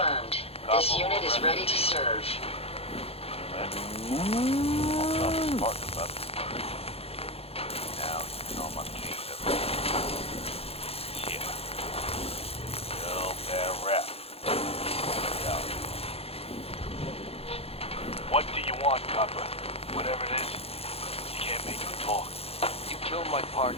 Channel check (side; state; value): right; late; 0.29 ms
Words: This unit is ready to serve. Now, you know my case everywhere. Yeah. Real bad rap. Yeah. What do you want, copper? Whatever it is, you can't make me talk. You killed my